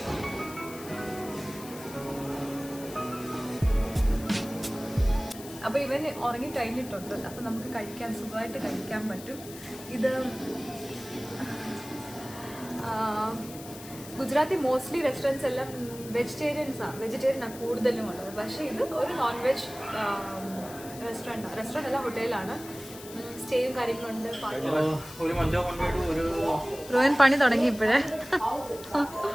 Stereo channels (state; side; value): noise; left; hiss, 15 dB below the sound